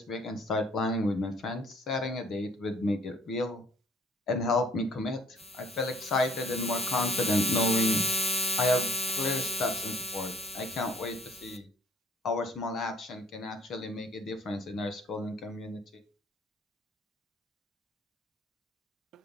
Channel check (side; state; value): both; normal; correlation 0.58